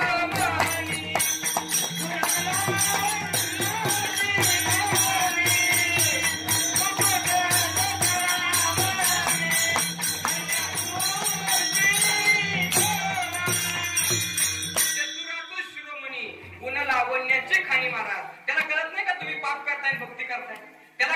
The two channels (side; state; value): both; identical; correlation 1.00